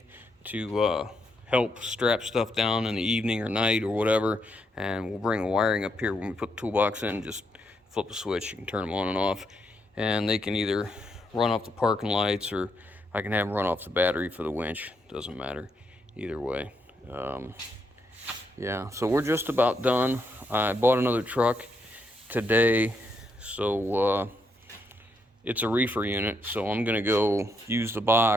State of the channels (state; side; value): normal; both; correlation 0.78